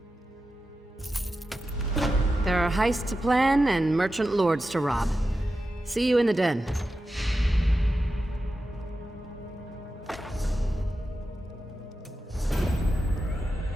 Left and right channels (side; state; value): both; normal; correlation 0.91